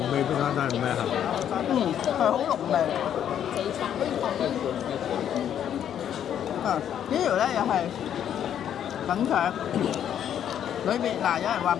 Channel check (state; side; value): quieter; right; 9.7 dB